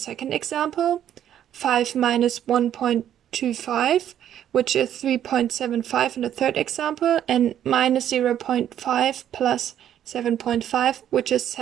example, 5 minus 1.25, which is 3.75 in the third example, and minus 0.5 plus 7.5, which is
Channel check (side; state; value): left; quieter; 10.5 dB